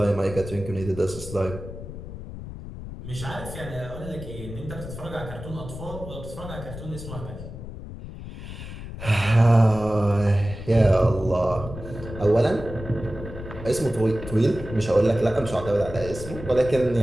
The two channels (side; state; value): left; noise; rumble, 11 dB below the sound